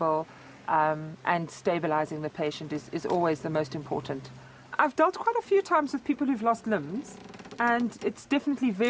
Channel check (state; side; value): identical; both; correlation 1.00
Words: and stabilizing the patient is always the most important. I've dealt quite a few times with people who've lost limbs, and it's definitely